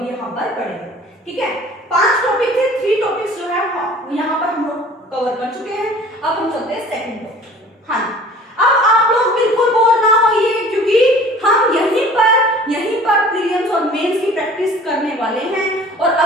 यहाँ पर पढ़ेंगे। ठीक है, 5 टॉपिक थे, 3 टॉपिक्स जो है यहाँ पर हम लोग कवर कर चुके हैं। अब हम चलते हैं सेकंड टॉपिक। हाँ, अब आप लोग बिल्कुल बोर ना होइए क्योंकि हम यहीं पर प्रीलिम्स और मेंस की प्रैक्टिस करने वाले हैं। और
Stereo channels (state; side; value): normal; both; correlation 0.47